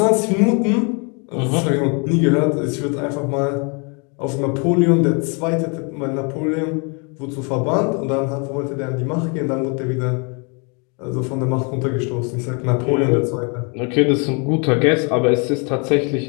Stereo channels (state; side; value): quieter; right; 34.3 dB